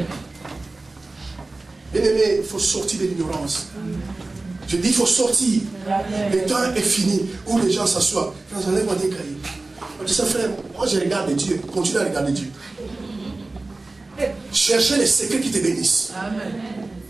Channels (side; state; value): left; quieter; 3.2 dB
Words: Bien aimé, il faut sortir de l'ignorance. Je dis, il faut sortir. Amen. Le temps est fini où les gens s'assoient. Quand enlève-moi des cahiers. On dit ça, frère, moi je regarde Dieu. Continue à regarder Dieu. Cherchez les secrets qui te bénissent. Amen.